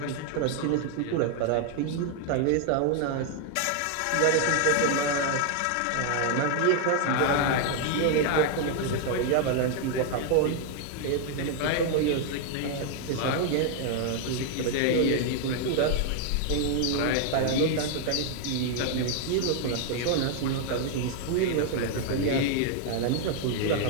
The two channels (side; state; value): both; different; correlation 0.00